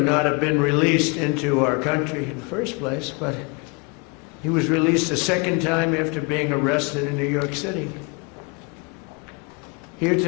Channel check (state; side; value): quieter; right; 31.8 dB